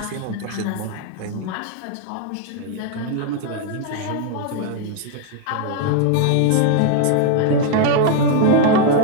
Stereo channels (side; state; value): both; different; correlation 0.00